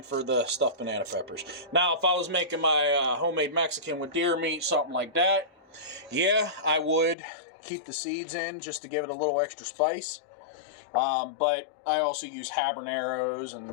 for the stuffed banana peppers. Now, if I was making my homemade Mexican with deer meat, something like that, yeah, I would keep the seeds in just to give it a little extra spice. But I also use habaneros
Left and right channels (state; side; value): drops out; right; at 7.2 s